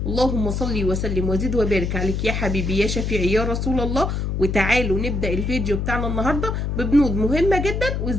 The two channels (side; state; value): left; noise; hum, 1 dB below the sound